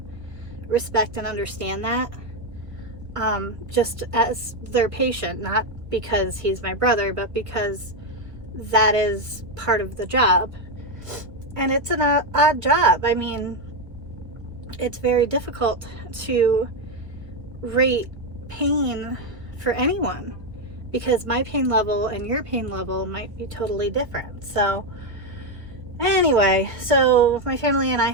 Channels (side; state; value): left; late; 1.3 ms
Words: respect and understand that, just as their patient, not because he's my brother, but because that is part of the job. And it's an odd job. I mean, it's very difficult to rate pain for anyone because my pain level and your pain level might be totally different. So anyway, so my family and I